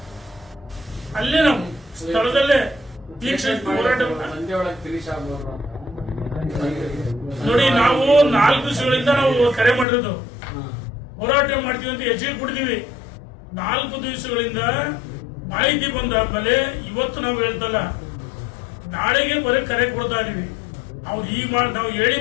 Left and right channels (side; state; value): right; drops out; at 9.9 s